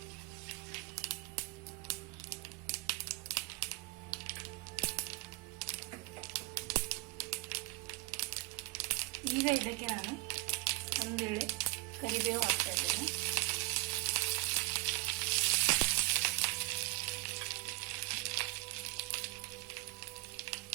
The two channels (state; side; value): quieter; left; 22.9 dB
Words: ಈಗ ಇದಕ್ಕೆ ನಾನು ಒಂದು ಎಳೆ ಕರಿಬೇವು ಹಾಕ್ತಾ ಇದ್ದೇನೆ.